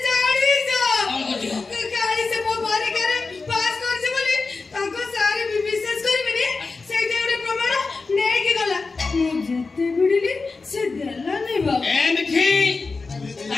ଜାଣିଛ କାଲି ସେ ମୋ ପରୀକ୍ଷାରେ ପାସ୍ କରିছে ବୋଲି ତାଙ୍କ ସାର୍ ବିଶ୍ୱାସ କରିବେନି ସେଇଟା ଗୋଟେ ପ୍ରମାଣ ନେଇକି ଗଲା ମୁଁ ଯେତେ ଭିଡ଼ିଲି ସେ ଦେଲାନି ବାବା ଏମିତି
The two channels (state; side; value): quieter; right; 4.1 dB